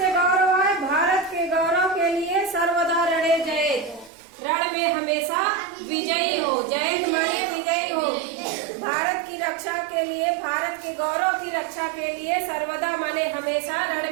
गौरव है, भारत के गौरव के लिए सर्वदा रणे जयेत, रण में हमेशा विजयी हो। जयेत माने विजयी हो। भारत की रक्षा के लिए, भारत के गौरव की रक्षा के लिए सर्वदा माने हमेशा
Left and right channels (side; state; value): left; drops out; at 4.1 s